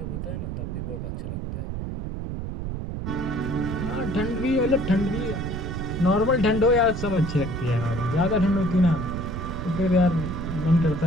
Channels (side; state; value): right; noise; rumble, 5 dB below the sound